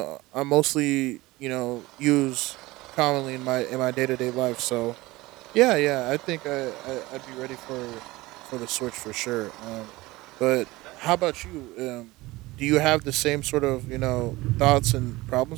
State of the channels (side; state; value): left; quieter; 20.1 dB